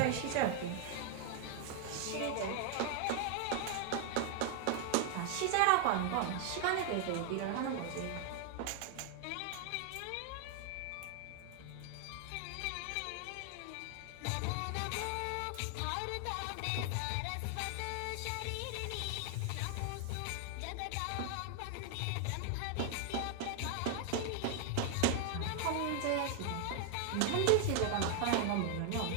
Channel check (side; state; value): both; different; correlation 0.00